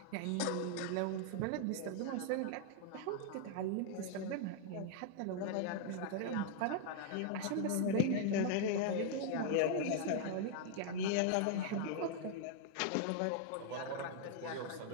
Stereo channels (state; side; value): different; both; correlation 0.00